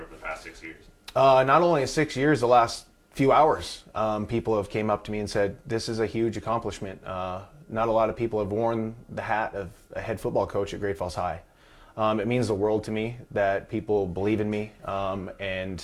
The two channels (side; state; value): both; identical; correlation 1.00